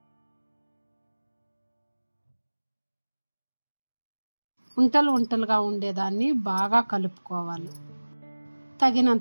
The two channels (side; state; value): both; inverted; correlation -1.00